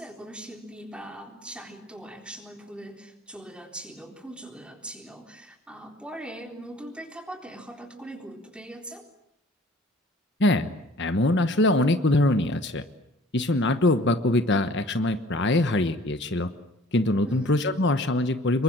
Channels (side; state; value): both; normal; correlation 0.51